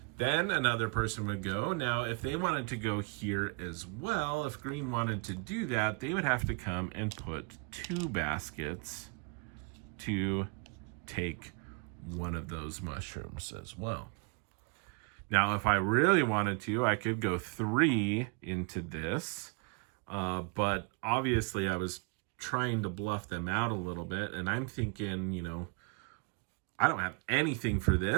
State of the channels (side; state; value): left; quieter; 33.4 dB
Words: Then another person would go. Now, if they wanted to go here as well, if green wanted to do that, they would have to come and put 2 baskets to take one of those mushrooms as well. Now, if I really wanted to, I could go 3 into this, but obviously I was trying to bluff them out a little bit, and I'm thinking, you know, I don't have anything for